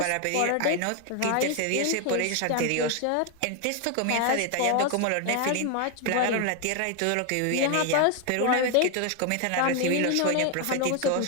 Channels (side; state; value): both; different; correlation 0.01